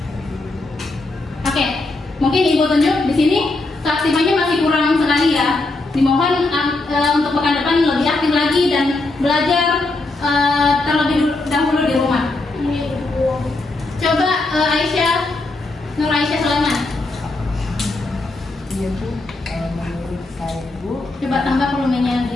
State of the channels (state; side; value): quieter; right; 3.1 dB